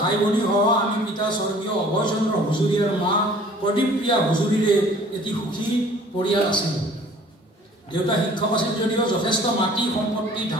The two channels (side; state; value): both; normal; correlation 0.51